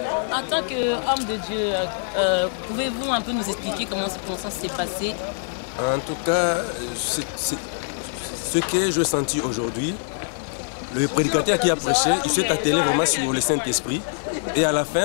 En tant qu'homme de Dieu, pouvez-vous un peu nous expliquer comment cette convention s'est passée? En tout cas, ce que j'ai senti aujourd'hui, le prédicateur qui a prêché, il s'est attelé vraiment sur le Saint-Esprit. Et à la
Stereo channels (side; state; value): right; silent; 57 dB below the other